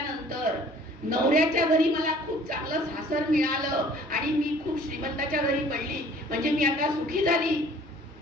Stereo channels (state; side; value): normal; both; correlation 0.53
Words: नवऱ्याच्या घरी मला खूप चांगलं सासर मिळालं आणि मी खूप श्रीमंताच्या घरी पडली म्हणजे मी आता सुखी झाली,